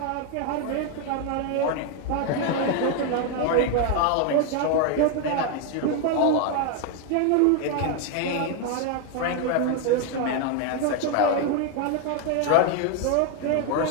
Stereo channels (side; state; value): both; different; correlation 0.01